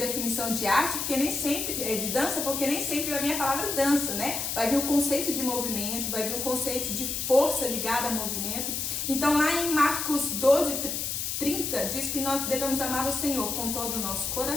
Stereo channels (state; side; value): noise; left; hiss, 2 dB below the sound